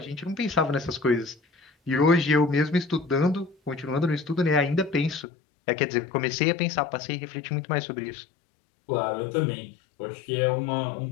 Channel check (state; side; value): drops out; right; at 5.2 s